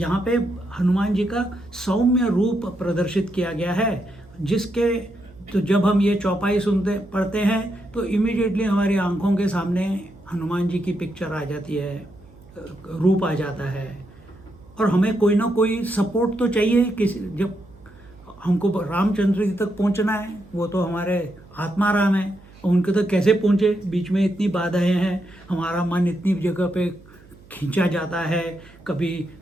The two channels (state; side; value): noise; right; hum, 24 dB below the sound